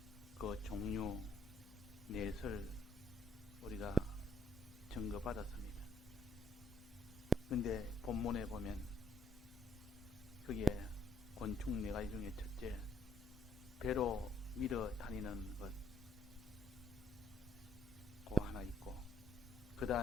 그 종류 넷을 우리가 증거받았습니다. 근데 본문에 보면 그게 곤충 네 가지 중에 첫째, 배로 밀어 다니는 것, 그거 하나 있고, 그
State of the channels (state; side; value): normal; both; correlation 0.70